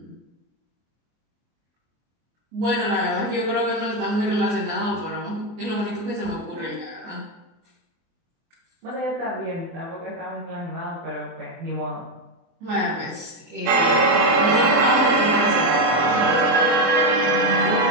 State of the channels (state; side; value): late; left; 24 ms